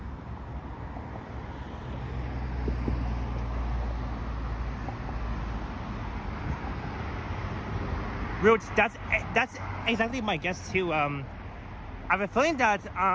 Roots, that's exactly my guess too. I have a feeling that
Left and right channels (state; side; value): identical; both; correlation 1.00